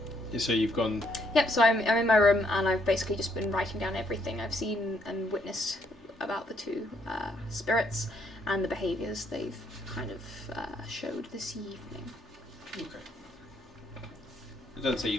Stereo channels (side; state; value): both; normal; correlation 0.71